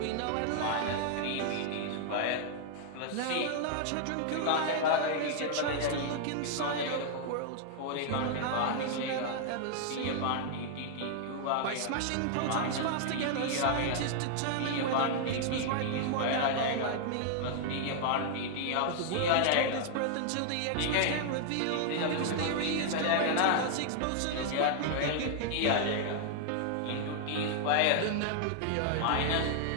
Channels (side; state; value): both; different; correlation 0.00